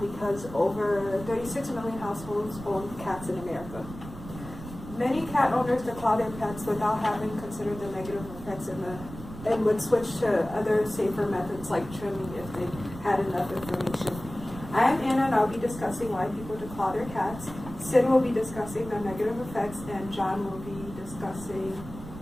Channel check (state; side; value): noise; right; rumble, 13 dB below the sound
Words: because over 36 million households own cats in America. Many cat owners declaw their pets without having considered the negative effects and would switch to other safer methods like trimming if they had enough information. I am Anna and I'll be discussing why people declaw their cats. Sid will be discussing the negative effects and John will be discussing